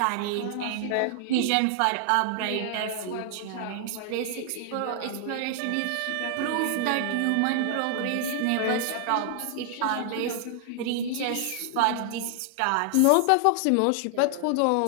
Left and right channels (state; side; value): different; both; correlation 0.00